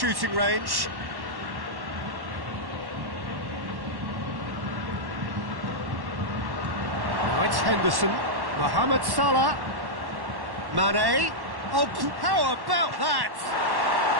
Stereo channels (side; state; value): left; late; 1.1 ms